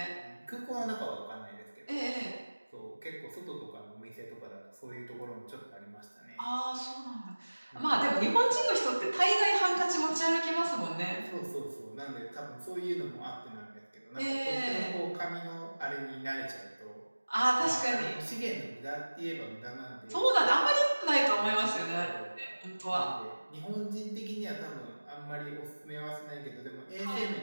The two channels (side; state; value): both; inverted; correlation -1.00